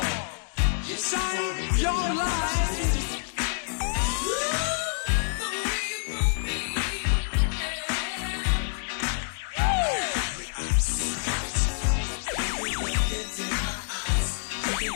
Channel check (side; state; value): right; silent; digital silence